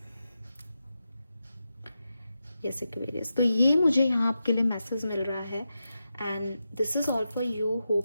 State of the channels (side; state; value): both; inverted; correlation -0.89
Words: एक्वेरियस, तो ये मुझे यहाँ आपके लिए मैसेज मिल रहा है, and this is all for you.